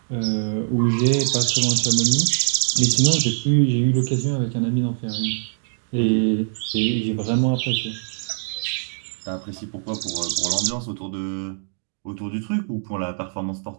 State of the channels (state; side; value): silent; left; digital silence